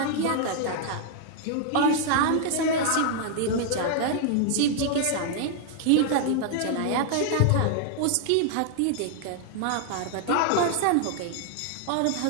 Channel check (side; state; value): both; different; correlation 0.00